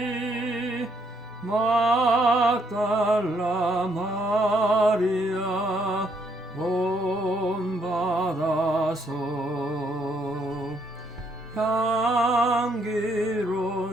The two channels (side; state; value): both; normal; correlation 0.72